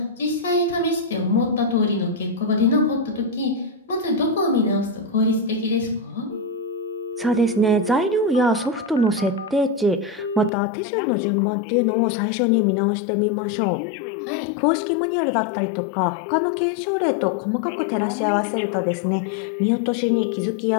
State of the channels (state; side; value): drops out; right; at 10.5 s